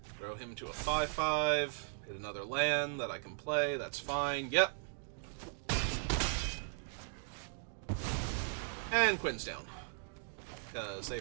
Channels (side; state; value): left; silent; digital silence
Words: Throw him to a 5/5. Hit another land that I can play. That's fine. Yep. And Quinn's down. Because they